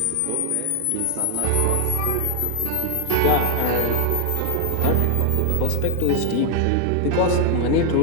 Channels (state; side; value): different; both; correlation 0.00